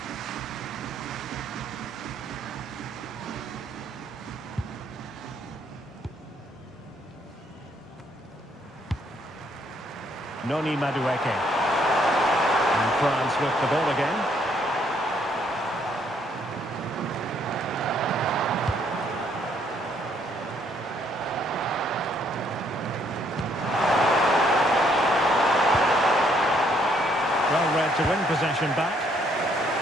Noni Madueke. And France with the ball again. Well read to win possession back.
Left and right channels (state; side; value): normal; both; correlation 0.68